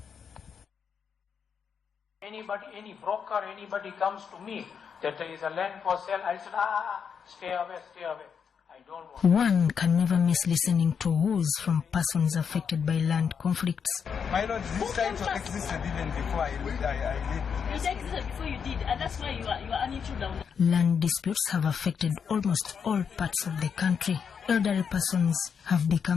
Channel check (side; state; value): right; quieter; 6.8 dB